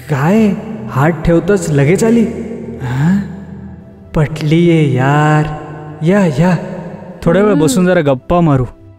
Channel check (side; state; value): both; identical; correlation 1.00